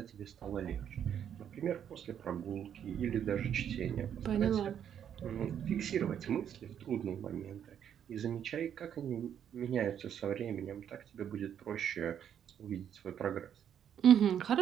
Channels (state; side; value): quieter; left; 9.1 dB